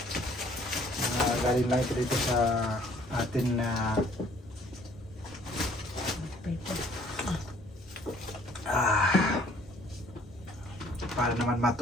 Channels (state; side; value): normal; both; correlation 0.58